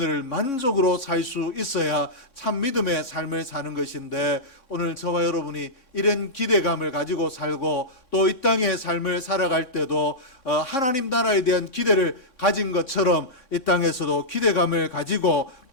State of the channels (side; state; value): right; late; 3.6 ms